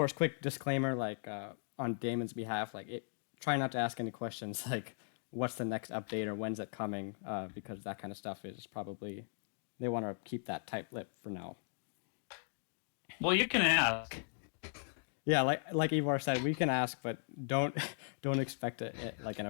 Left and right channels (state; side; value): silent; right; digital silence